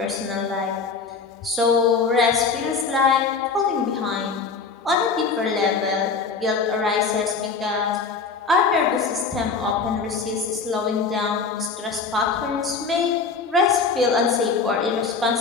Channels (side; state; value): right; quieter; 4.9 dB